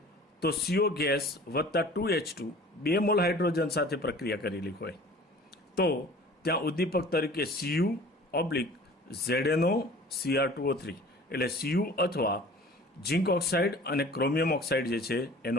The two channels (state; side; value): normal; both; correlation 0.46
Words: તો CO ગેસ વત્તા 2H2 2 મોલ હાઇડ્રોજન સાથે પ્રક્રિયા કરેલી હોય તો ત્યાં ઉદ્દીપક તરીકે Cu/ZnO Cr2O3 એટલે Cu અથવા ઝિંક ઓક્સાઇડ અને ક્રોમિયમ ઓક્સાઇડ જે છે